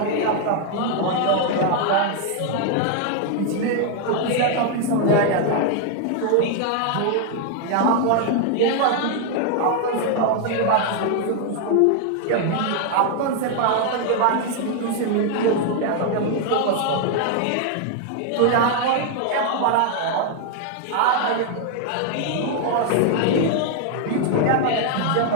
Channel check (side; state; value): both; different; correlation 0.00